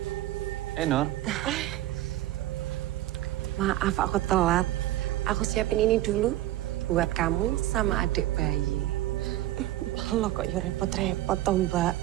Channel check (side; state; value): left; quieter; 15.0 dB